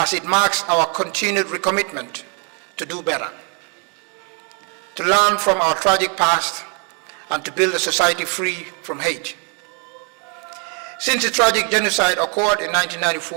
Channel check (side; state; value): left; quieter; 37.6 dB